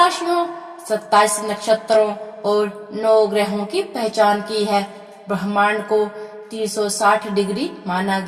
27 नक्षत्रों और 9 ग्रहों की पहचान की है। ब्रह्मांड को 360 डिग्री माना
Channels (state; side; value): identical; both; correlation 1.00